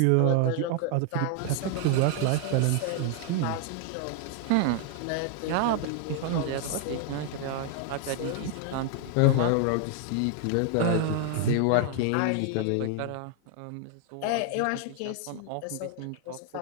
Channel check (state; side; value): different; both; correlation 0.00